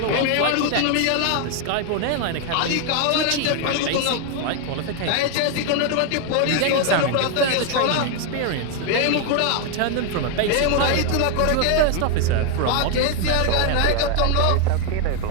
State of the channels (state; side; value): different; both; correlation 0.01